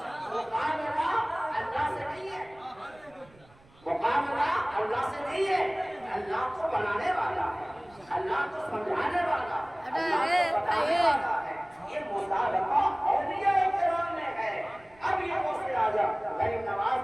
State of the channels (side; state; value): right; noise; rumble, 27 dB below the sound